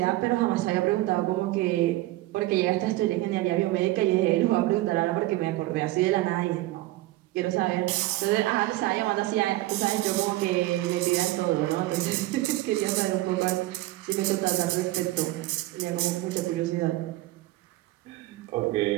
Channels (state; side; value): quieter; left; 17.6 dB